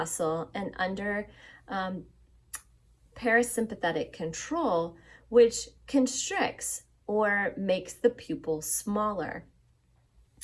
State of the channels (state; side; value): identical; both; correlation 1.00